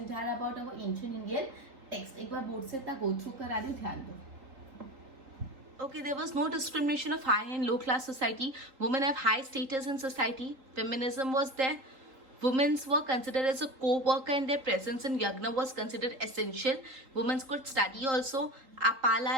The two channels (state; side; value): late; left; 3.8 ms